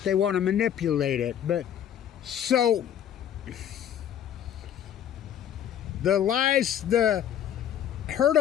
they want to manipulate it. But so the lies, the herd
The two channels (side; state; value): right; quieter; 9.8 dB